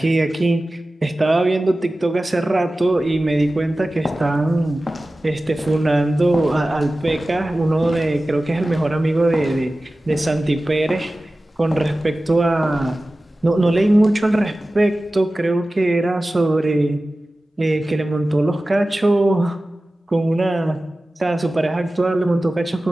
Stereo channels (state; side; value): normal; both; correlation 0.96